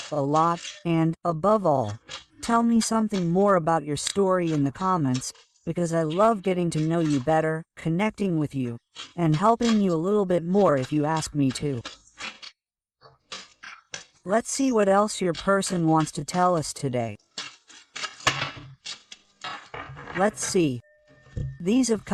lot, and, above all, tell me something more about your story in the comments, because I love getting to know you better, connecting with you, and helping you a little bit more if you ask me to. Let's see what else your person wants to tell us today. Let's see. These have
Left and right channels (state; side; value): identical; both; correlation 1.00